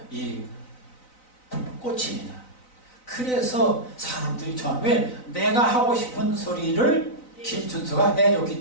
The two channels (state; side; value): late; right; 3.9 ms